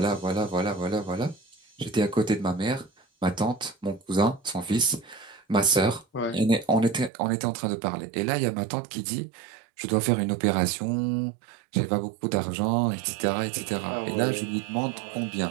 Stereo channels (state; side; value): drops out; left; at 7.1 s